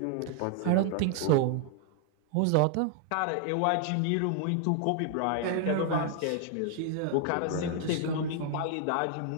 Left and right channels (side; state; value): both; different; correlation 0.00